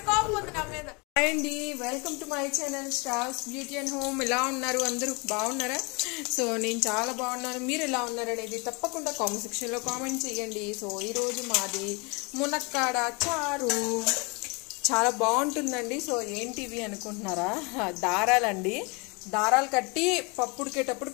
కోపం ఉంది నా మీద. హాయ్ అండి, welcome to my channel stars beauty and home. ఎలా ఉన్నారు అందరూ? బాగున్నారా? సో నేను చాలా బాగున్నాను. మీరు ఎలా ఉన్నారు అనేది తప్పకుండా కామెంట్ సెక్షన్లో కామెంట్ చేయండి. సో ఈరోజు మాది మునక్కాడ చారు. చాలా బాగుంటుందండి. సో ఏంటివి అనుకుంటున్నారా? దారాలండి. దారాలు కట్టి పప్పు ఉడికేటప్పుడు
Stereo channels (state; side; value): quieter; right; 29.6 dB